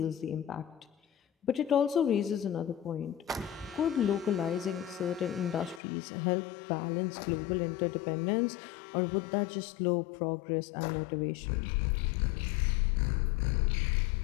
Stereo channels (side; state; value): right; drops out; at 5.8 s